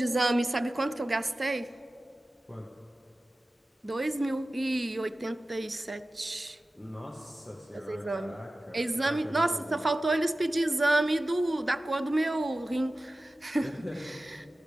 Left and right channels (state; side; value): normal; both; correlation 0.96